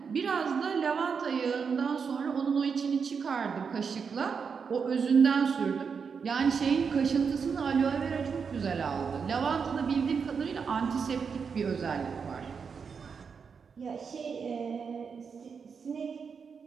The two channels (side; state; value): left; quieter; 6.0 dB